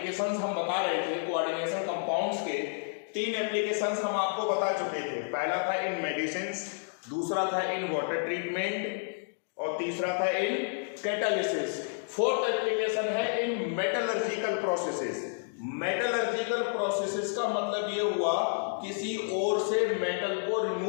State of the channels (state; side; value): silent; right; digital silence